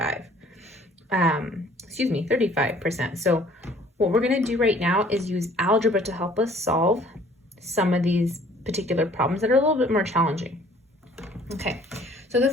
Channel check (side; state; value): both; normal; correlation 0.55